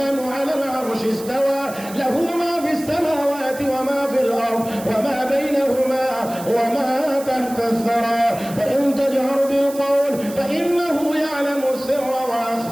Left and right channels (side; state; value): right; noise; hiss, 16 dB below the sound